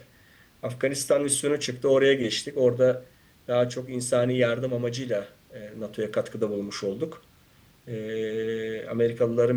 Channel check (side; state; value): both; identical; correlation 1.00